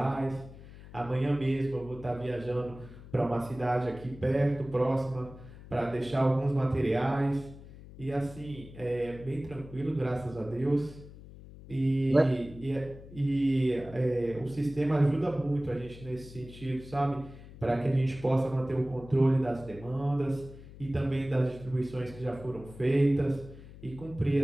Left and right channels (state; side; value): noise; left; hum, 17 dB below the sound